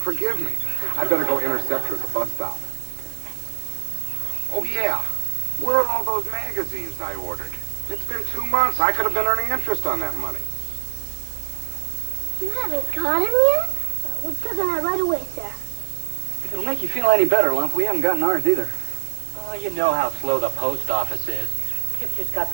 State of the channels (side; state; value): left; silent; digital silence